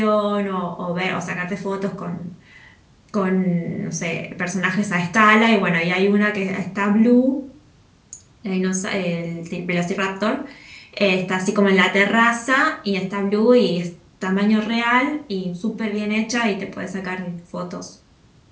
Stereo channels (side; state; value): both; identical; correlation 1.00